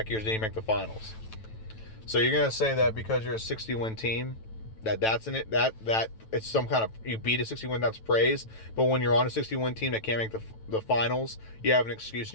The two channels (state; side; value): late; right; 9.1 ms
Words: years didn't make the finals. So you're gonna say that because you're a 60-win team, that's in it. That it's some kind of, you beat a 60-win, that's praise. But when you're on a 60-win team that can't make the finals, you have an excuse